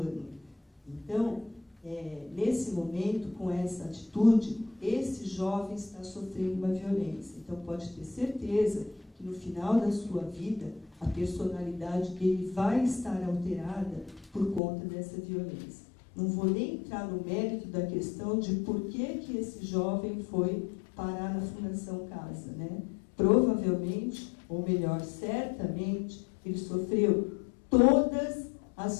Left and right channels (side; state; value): right; drops out; at 14.6 s